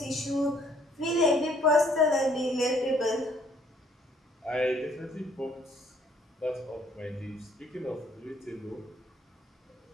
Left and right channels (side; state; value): both; normal; correlation 0.62